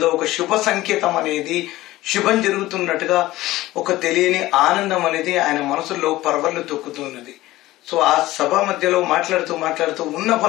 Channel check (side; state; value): right; quieter; 17.0 dB